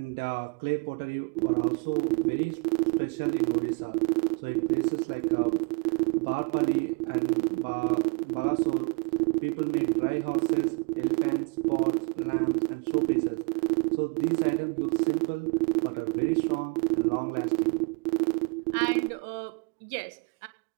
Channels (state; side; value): quieter; left; 33.5 dB